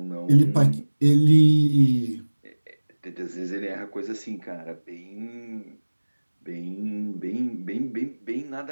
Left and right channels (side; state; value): both; inverted; correlation -1.00